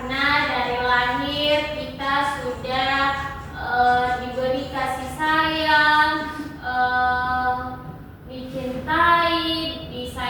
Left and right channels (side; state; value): both; identical; correlation 1.00